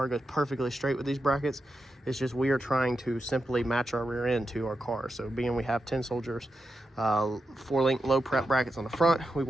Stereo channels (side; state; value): both; normal; correlation 0.88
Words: goes perfectly straight with these brackets. It's just we are trying to simply match our rear end to our car. So being we have 10 Soldiers 4-link low prep brackets on the front, we